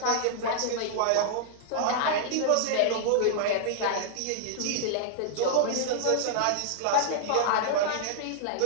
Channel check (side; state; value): both; different; correlation -0.01